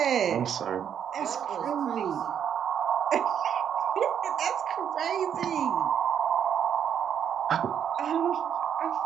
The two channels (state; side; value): quieter; left; 8.7 dB